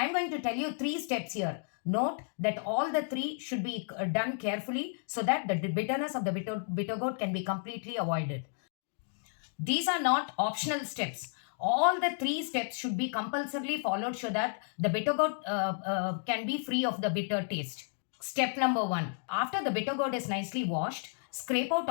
am going to tell you three steps here. Note that all the three should be done carefully so that the bitterness of the bitter gourd can be completely avoided. These are not optional steps. All the three steps should be compulsorily followed so that the bitter gourd can be free of the bitter taste. Step number one, after the bitter gourd is nicely washed, scrape out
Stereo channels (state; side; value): silent; right; 56 dB below the other